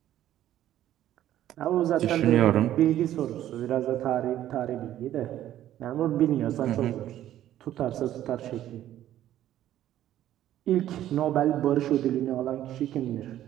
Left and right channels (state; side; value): quieter; left; 12.4 dB